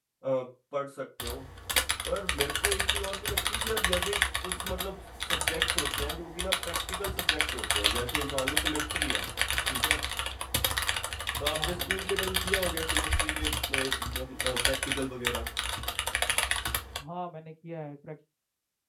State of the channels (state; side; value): identical; both; correlation 1.00